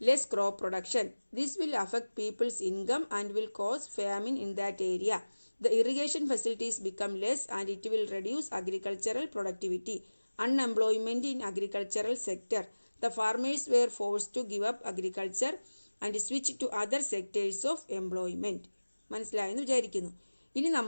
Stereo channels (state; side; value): inverted; both; correlation -1.00